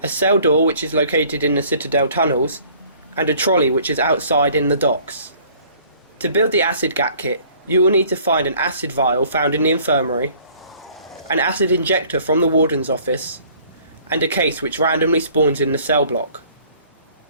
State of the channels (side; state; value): both; inverted; correlation -0.55